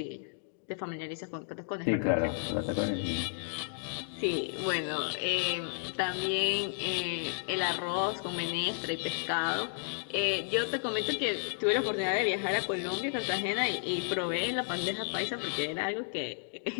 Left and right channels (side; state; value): right; silent; digital silence